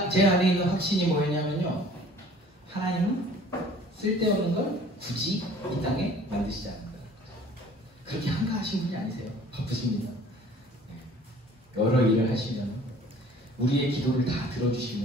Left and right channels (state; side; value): normal; both; correlation 0.51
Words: 제 안에 있는 확신이 뭐였냐면요, 하나님은 쓸데없는 걸 굳이 이 땅에 만드시지 않는다. 그렇게 한가하신 분이 아니세요. 바쁘십니다. 여러 일을 하시면, 우리의 기도를 다